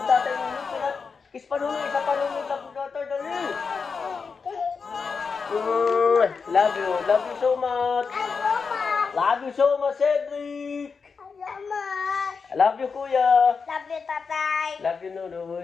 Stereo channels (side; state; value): right; quieter; 5.3 dB